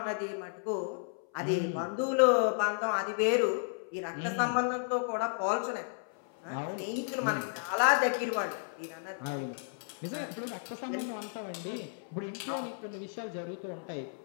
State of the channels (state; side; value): silent; right; 56 dB below the other